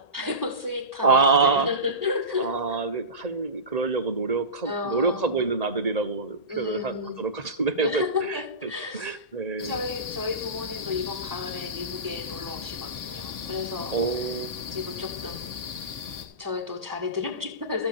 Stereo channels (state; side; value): late; right; 1.8 ms